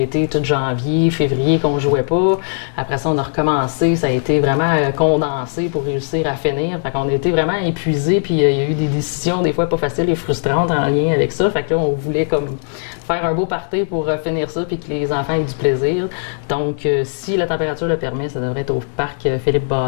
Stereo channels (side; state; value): right; silent; digital silence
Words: tout janvier, février qu'on jouait pas. Après ça, on a recommencé. Ça a été vraiment condensé pour réussir à finir. Fait qu'on a été vraiment épuisés. Puis il y a eu des décisions des fois pas faciles et frustrantes en lien avec ça. Fait que là, on voulait comme faire un beau party pour finir ça puis que les enfants aient du plaisir. Donc, si la température le permet, ça devrait être au parc Philippe